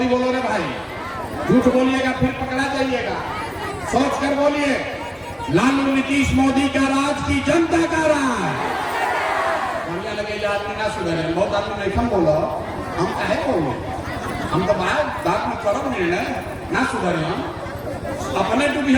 बोलो रे भाई। झूठ बोलिएगा फिर पकड़ा जाइएगा। सोच कर बोलिए, लालू नीतीश मोदी का राज की जनता का राज। बढ़िया लगे आदमी ना सुधरे, बहुत आदमी नहीं हम बोलो, हम काहे बोलो, हम तो बात में करब निर्णय ना सुधरे, हम अपने डूबी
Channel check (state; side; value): identical; both; correlation 1.00